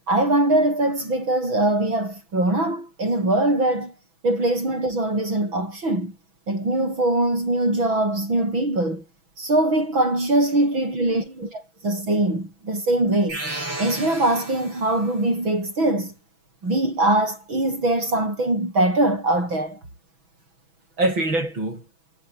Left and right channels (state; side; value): late; left; 6.1 ms